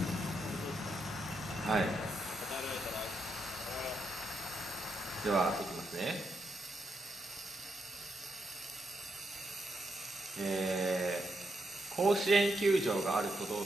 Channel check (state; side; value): normal; both; correlation 0.81